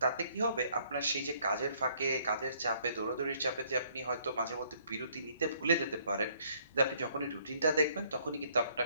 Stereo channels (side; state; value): both; inverted; correlation -0.64